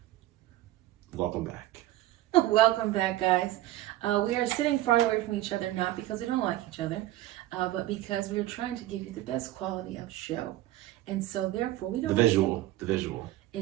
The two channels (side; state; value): left; quieter; 15.4 dB